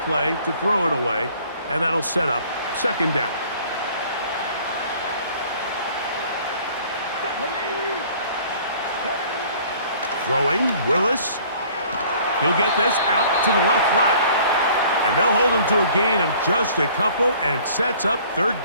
play to throw it away, and that'll set up 2nd down. Throwing, Willis. He'll get this out to the left flat, and they'll hold him to a gain of just a couple and sets up 3rd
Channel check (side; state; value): both; inverted; correlation -0.53